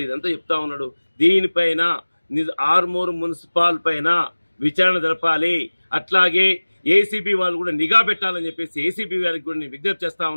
ఇదంతా చెప్తా ఉన్నాడు. దీనిపైన ఆర్మూర్ మున్సిపాల్ పైన విచారణ జరపాలి. అట్లాగే ఏసీబీ వాళ్ళు కూడా నిఘా పెట్టాలని చెప్పేసి ఏసీబీ గారికి కూడా నేను విజ్ఞప్తి చేస్తా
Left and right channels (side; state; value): both; inverted; correlation -1.00